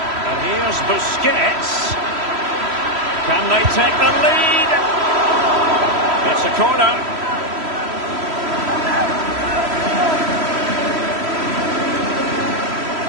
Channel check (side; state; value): left; late; 3.1 ms